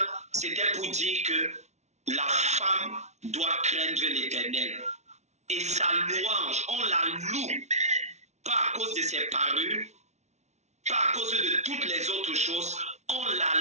c'était pour dire que la femme doit craindre l'Éternel. Et sa louange, on la loue, pas à cause de ses parures, pas à cause de toutes les autres choses, on la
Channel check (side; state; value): left; late; 0.32 ms